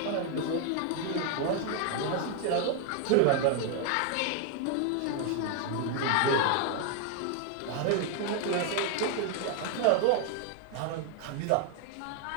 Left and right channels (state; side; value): different; both; correlation 0.00